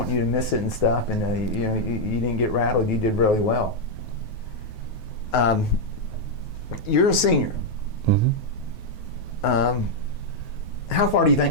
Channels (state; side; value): late; right; 9.3 ms